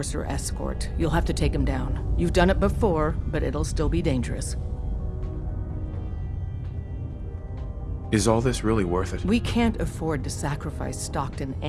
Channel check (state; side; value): identical; both; correlation 1.00